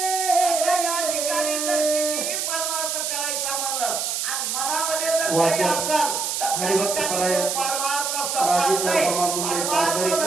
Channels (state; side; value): noise; right; hiss, 1 dB below the sound